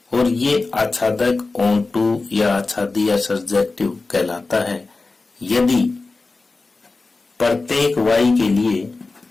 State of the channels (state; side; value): quieter; right; 3.7 dB